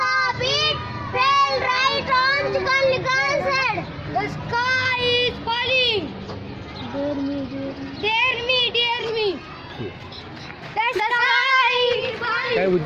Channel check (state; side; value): identical; both; correlation 1.00